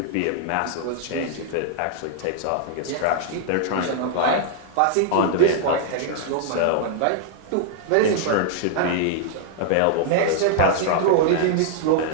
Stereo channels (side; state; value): both; different; correlation -0.01